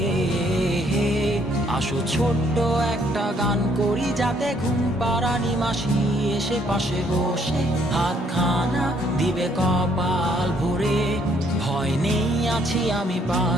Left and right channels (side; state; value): both; normal; correlation 0.67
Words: আসো ছোট্ট একটা গান করি, যাতে ঘুম পাড়ানি মাসি এসে পাশে বসে হাতখানা দিবে কপাল ভরে। ভয় নেই, আছি আমি